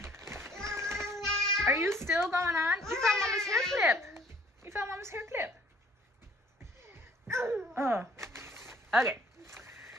Are you still going on? You found Mama's hair clip. You found Mama's hair clip. Oh. Okay.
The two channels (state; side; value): normal; both; correlation 0.57